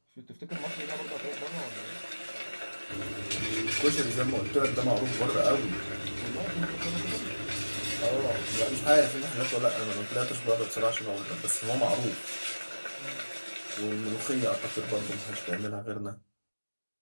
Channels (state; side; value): inverted; both; correlation -1.00